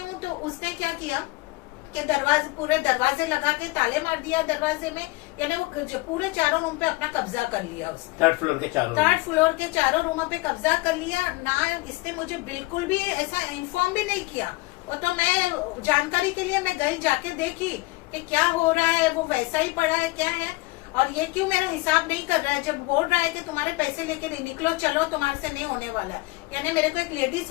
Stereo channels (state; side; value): quieter; right; 22.7 dB